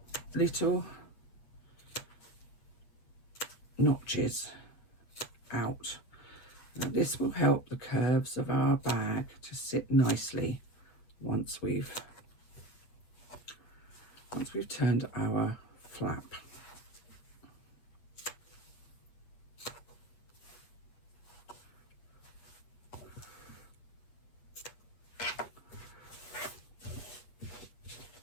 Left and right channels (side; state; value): right; late; 8.3 ms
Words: little notches out. Now this will help the curves of our bag to sit nicely once we've turned our flap.